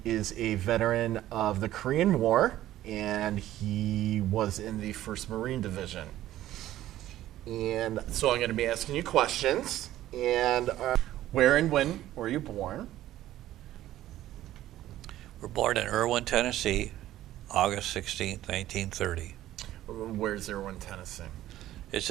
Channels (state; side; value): quieter; left; 13.9 dB